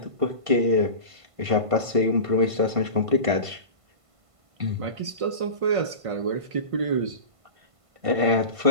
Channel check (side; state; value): left; late; 1.5 ms